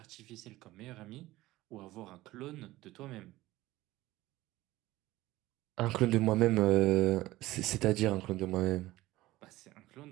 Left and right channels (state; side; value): quieter; left; 17.6 dB